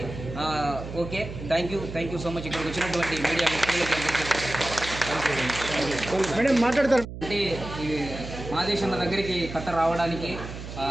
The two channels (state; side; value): noise; right; hum, 10 dB below the sound